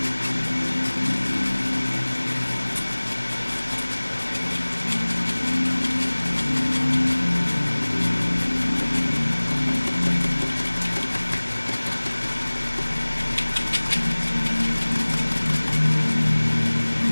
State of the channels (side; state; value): both; inverted; correlation -1.00